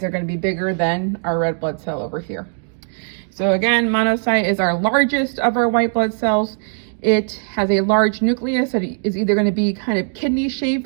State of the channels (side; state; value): left; silent; 62 dB below the other